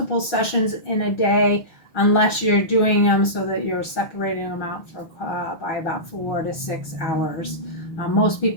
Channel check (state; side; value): late; right; 6.1 ms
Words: sessions in a day unless you're doing them so that you're separating them out by about 4 to 6 hours. Most